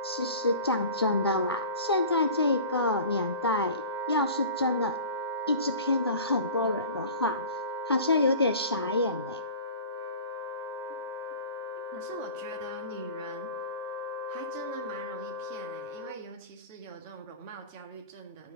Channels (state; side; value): inverted; both; correlation -0.39